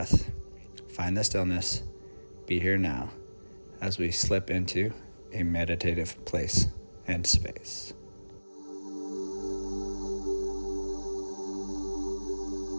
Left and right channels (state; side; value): inverted; both; correlation -1.00